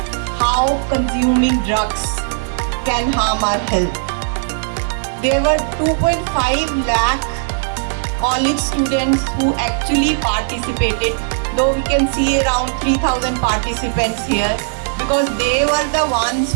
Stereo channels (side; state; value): left; silent; 68 dB below the other